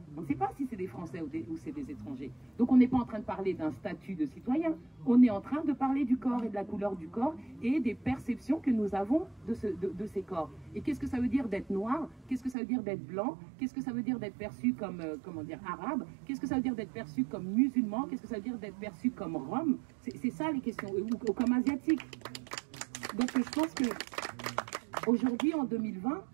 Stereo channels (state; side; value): drops out; left; at 12.6 s